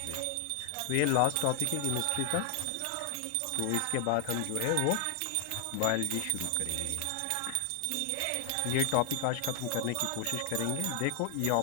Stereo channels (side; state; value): both; different; correlation 0.00